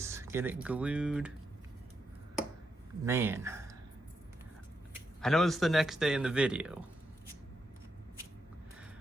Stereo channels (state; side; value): normal; both; correlation 0.83